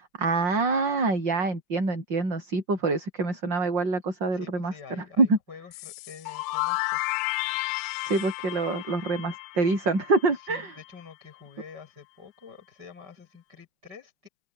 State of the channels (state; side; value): late; left; 5.6 ms